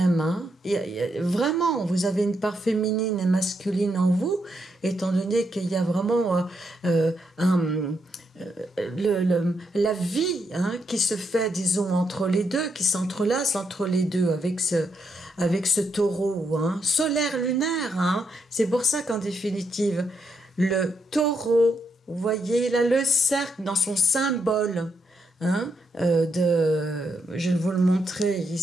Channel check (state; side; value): normal; both; correlation 0.80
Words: hein. Vraiment, vous avez une part féminine et masculine en vous, étant donné qu'il y a vraiment la vie, hein, qui se fait, disons, entre les deux, qui s'entrelace entre les deux, avec ce taureau, hein, solaire lunaire, hein. C'est pour ça qu'en définitive, le taureau, vous voyez, il a le cercle dans son symbole, hein, je vais vous le montrer